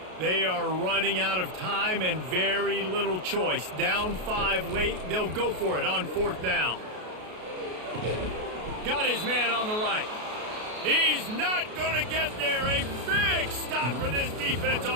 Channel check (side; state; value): left; late; 33 ms